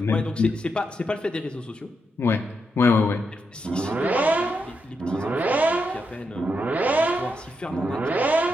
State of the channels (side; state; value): both; normal; correlation 0.83